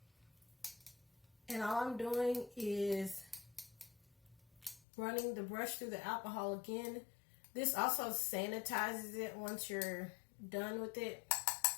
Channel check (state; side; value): drops out; right; at 4.8 s